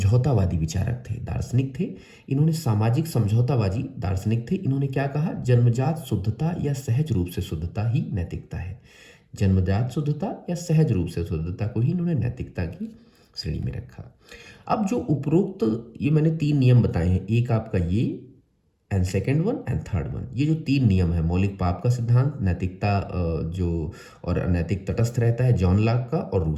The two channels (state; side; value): identical; both; correlation 1.00